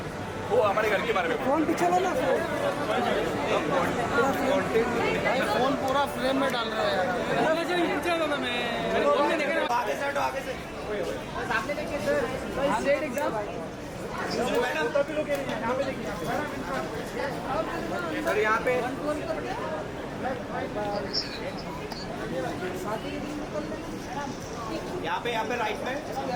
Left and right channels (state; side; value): identical; both; correlation 1.00